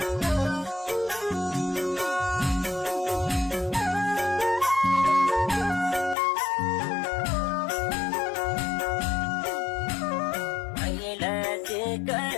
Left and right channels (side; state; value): right; drops out; at 6.2 s